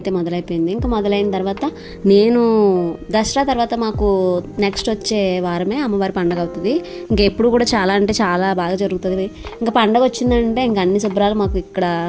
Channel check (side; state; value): both; identical; correlation 1.00